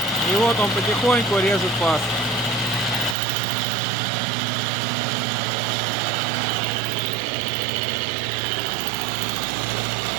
И вот он потихоньку режет паз.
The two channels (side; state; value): left; drops out; at 3.2 s